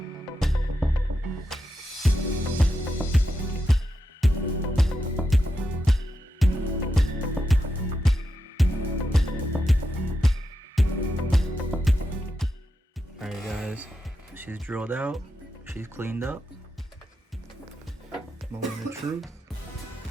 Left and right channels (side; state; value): both; normal; correlation 0.87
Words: Alright guys, she's drilled out, she's cleaned up. Moment of truth.